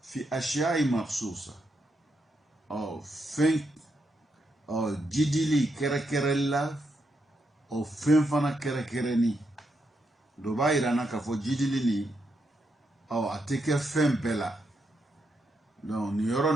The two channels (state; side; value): normal; both; correlation 0.81